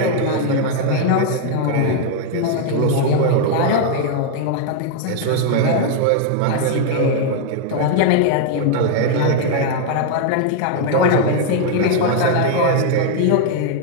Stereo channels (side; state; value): both; different; correlation 0.00